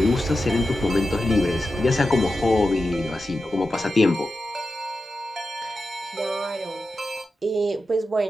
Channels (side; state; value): both; normal; correlation 0.91